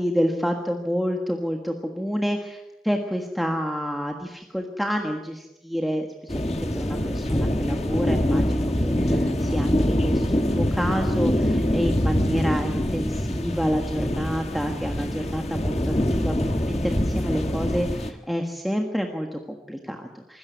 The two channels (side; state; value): both; normal; correlation 0.93